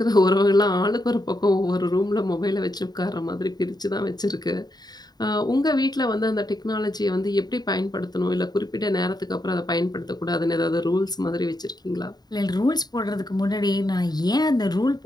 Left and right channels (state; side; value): late; right; 0.20 ms